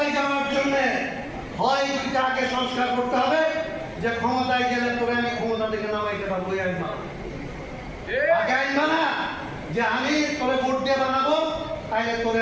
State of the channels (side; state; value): both; identical; correlation 1.00